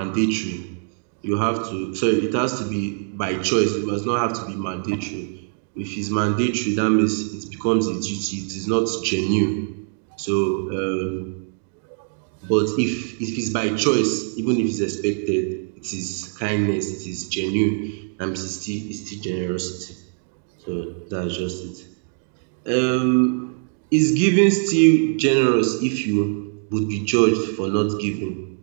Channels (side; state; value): left; silent; 62 dB below the other